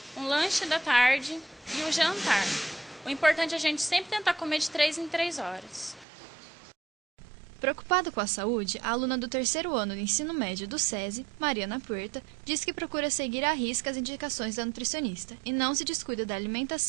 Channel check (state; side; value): drops out; left; at 6.1 s